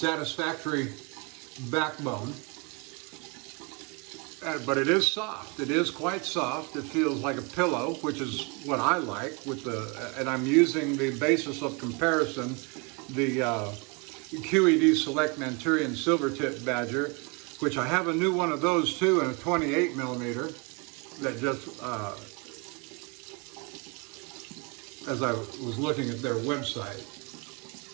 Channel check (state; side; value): quieter; left; 30.3 dB